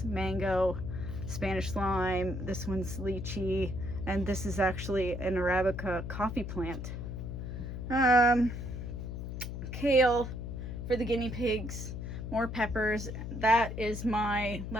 mango, Spanish lime, this one's lychee, and this is actually an Arabica coffee plant. Kale for the guinea pigs, more peppers. That is my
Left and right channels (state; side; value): noise; left; hum, 6 dB below the sound